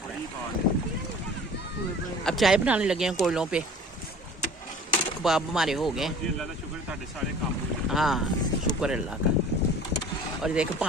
अब चाय बनाने लगे हैं कोयलों पे। कबाब हमारे हो गए। हाँ शुक्र अल्लाह का। और देखो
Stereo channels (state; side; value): normal; both; correlation 0.45